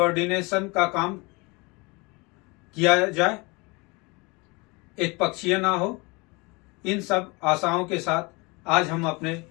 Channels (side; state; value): right; quieter; 26.8 dB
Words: का काम किया जाए, एक पक्षीय ना हो। इन सब आशाओं के साथ आज हम अपने